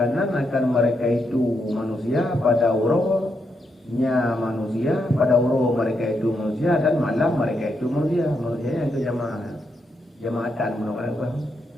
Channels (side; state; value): both; normal; correlation 0.81